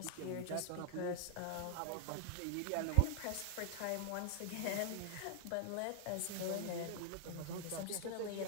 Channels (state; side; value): different; both; correlation 0.00